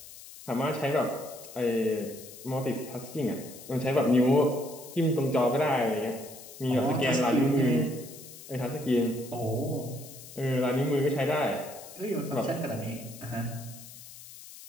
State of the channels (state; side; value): noise; left; hiss, 16 dB below the sound